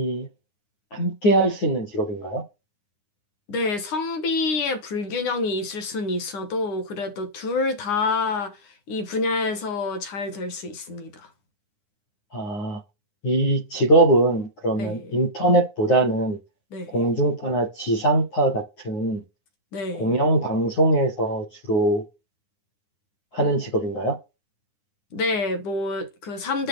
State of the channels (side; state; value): right; late; 9.7 ms